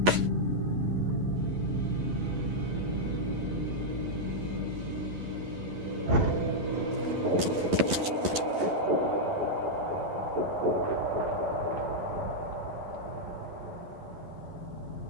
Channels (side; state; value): left; late; 11 ms